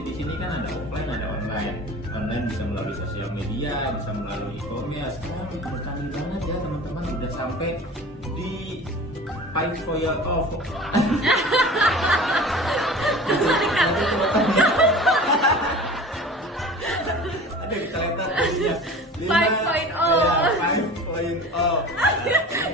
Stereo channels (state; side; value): normal; both; correlation 0.39